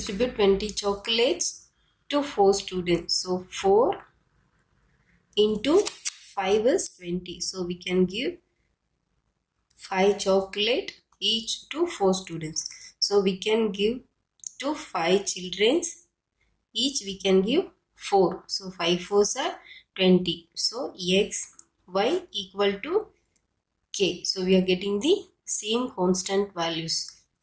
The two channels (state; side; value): identical; both; correlation 1.00